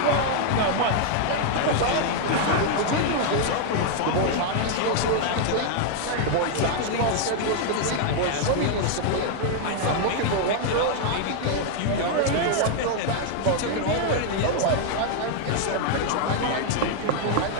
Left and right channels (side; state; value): both; different; correlation 0.00